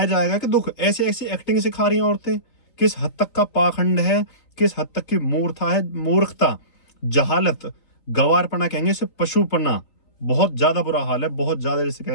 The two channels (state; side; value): late; right; 3.6 ms